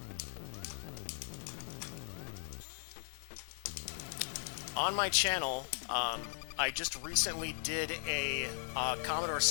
On my channel, I just recently did a Commodore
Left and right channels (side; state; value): right; silent; digital silence